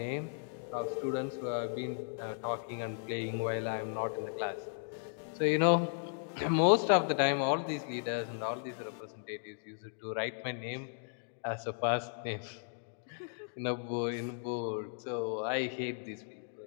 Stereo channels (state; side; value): silent; right; digital silence